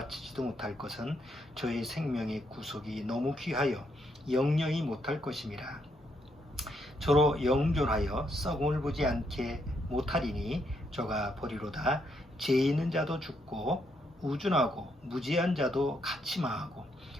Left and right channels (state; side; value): normal; both; correlation 0.76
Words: 못할 것은 저의 생명의 구속이 너무 귀하여 영영이 못할 것임이라. 저로 영존하여 썩음을 보지 않게 못하리니 저가 버리로다. 죄 있는 자도 죽고 우준하고 무지한 자도 같이 망하고